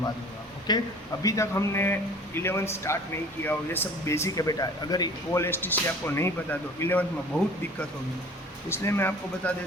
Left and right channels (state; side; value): normal; both; correlation 0.46